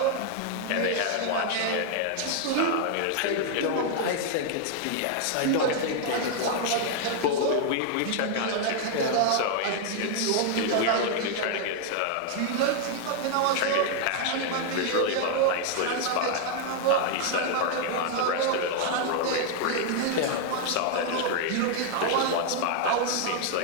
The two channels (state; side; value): different; both; correlation 0.00